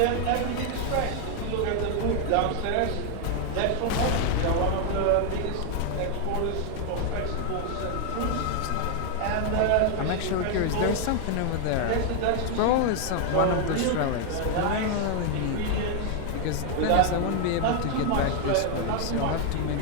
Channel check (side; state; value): both; different; correlation 0.00